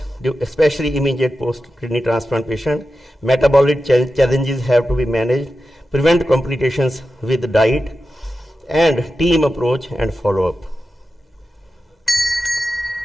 especially immediate post-kidney transplant patient. Metabolic challenges have to be managed. Prevent complications with diet, and team approach and follow-up.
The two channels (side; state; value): both; normal; correlation 0.92